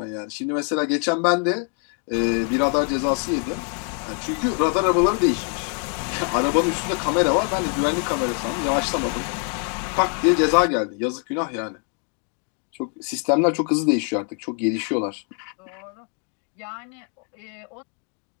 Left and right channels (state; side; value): quieter; right; 38.7 dB